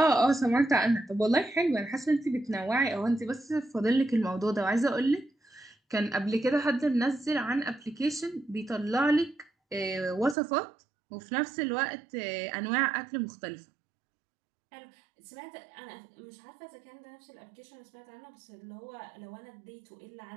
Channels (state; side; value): drops out; left; at 10.4 s